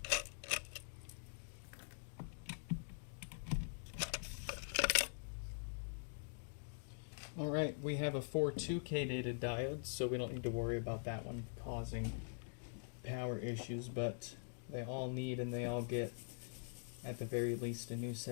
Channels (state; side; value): silent; right; digital silence